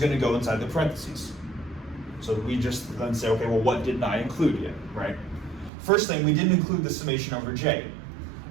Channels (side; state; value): left; drops out; at 5.7 s